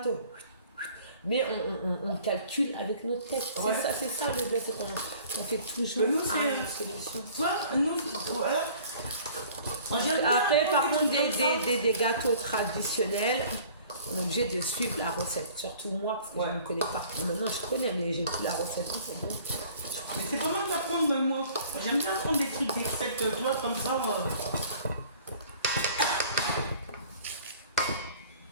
Mais on calcule avec notre tête. Ouais. C'est ça le bled, c'est qu'on fait toujours nous, une solution. Voilà. Après, par contre, des gâteaux traditionnels, on est obligé de suivre la recette. Surtout moi, parce que je ne connais pas. Maintenant, je connais, mais j'ai plus la recette. C'est bon. Mais c'est pas mal d'apprendre, moi. J'aime bien apprendre des trucs, des recettes, toi, comme ça.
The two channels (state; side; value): inverted; both; correlation -0.51